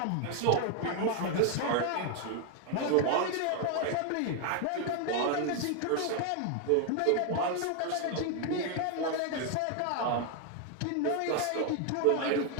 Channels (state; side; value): different; both; correlation 0.01